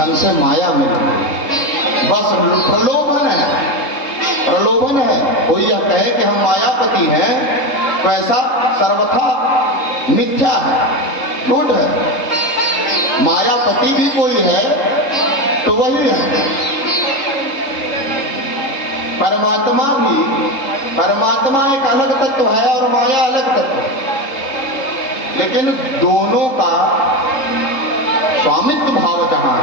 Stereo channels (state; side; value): late; right; 3.8 ms